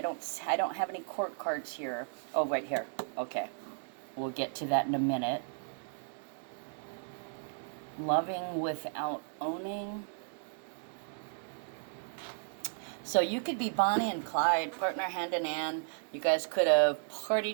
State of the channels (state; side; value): silent; left; 55 dB below the other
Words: have any court cards here. Oh, right here. Okay. We'll get to that in a minute. Loving without owning. So you could be Bonnie and Clyde, partner hand in hand. You guys could have